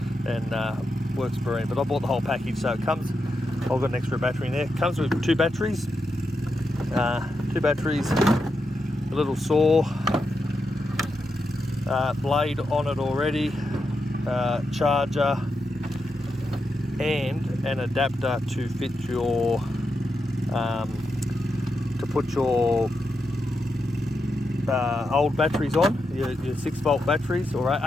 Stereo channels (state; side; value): normal; both; correlation 0.86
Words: works brilliant. But I bought the whole package, so it comes. I've got an extra battery in there. It comes with two batteries, a little saw, blade on it already, charger, and an adapter to fit your to put your old batteries on, your 6-volt batteries, or